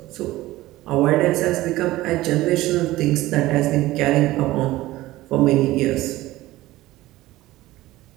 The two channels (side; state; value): left; quieter; 17.2 dB